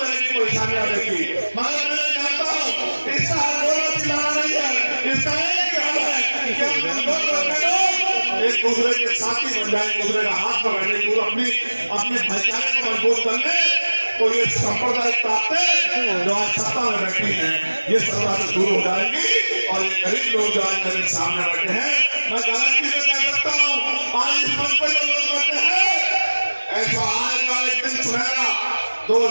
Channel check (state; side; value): inverted; both; correlation -1.00